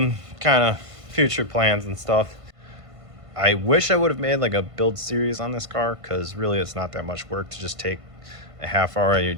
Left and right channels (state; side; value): late; left; 1.5 ms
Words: kind of future plans and stuff. I wish I would have made like a build series on this car, because really it's not that much work to just take a half hour out of your